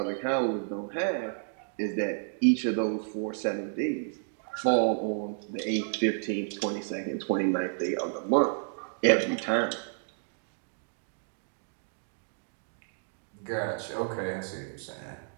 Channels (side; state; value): left; silent; digital silence